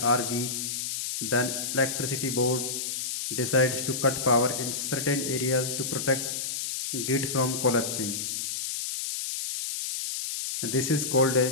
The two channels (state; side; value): noise; left; hiss, 3 dB below the sound